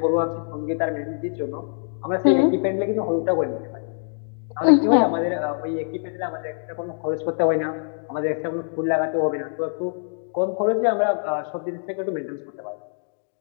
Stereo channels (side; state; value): right; silent; digital silence